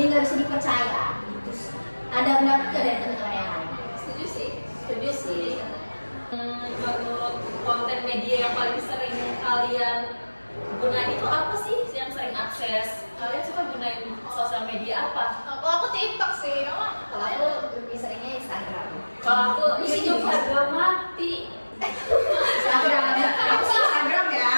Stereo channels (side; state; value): both; inverted; correlation -1.00